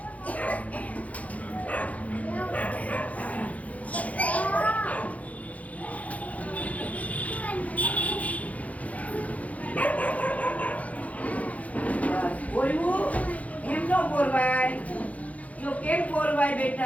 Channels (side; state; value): right; late; 0.069 ms